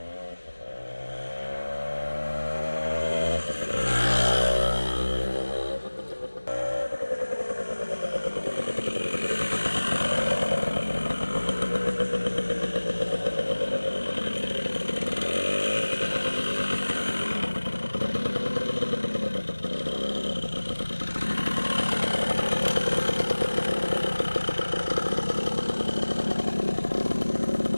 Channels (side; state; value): both; inverted; correlation -1.00